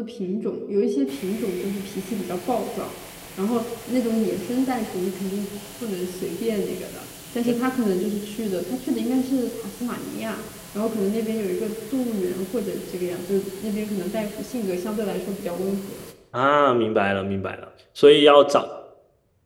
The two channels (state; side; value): identical; both; correlation 1.00